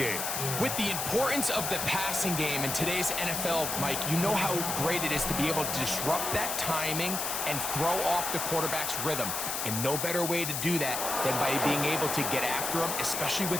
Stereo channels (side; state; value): left; noise; hiss, 2 dB below the sound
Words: With the importance of the passing game in today's NFL, Mike, you know how great it is to be able to disrupt that timing and throw off the quarterback's rhythm. And no better way to do that than by being able to get after him, especially